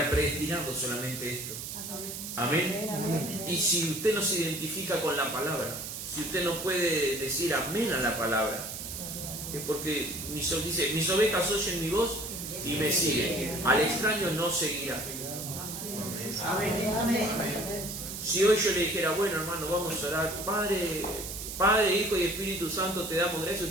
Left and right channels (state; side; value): noise; right; hiss, 7 dB below the sound